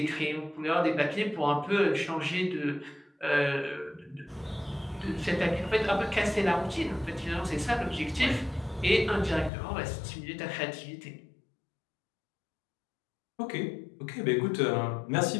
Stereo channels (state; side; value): drops out; right; at 9.5 s